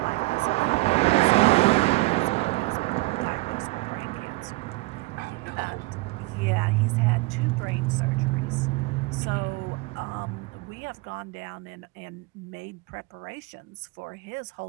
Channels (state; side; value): quieter; left; 23.1 dB